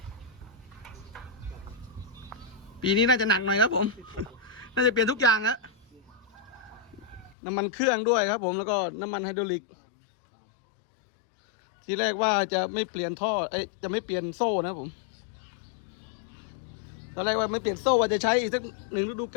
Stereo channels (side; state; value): right; drops out; at 7.4 s